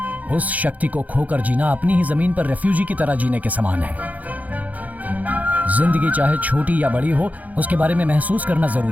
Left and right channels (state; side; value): late; left; 0.077 ms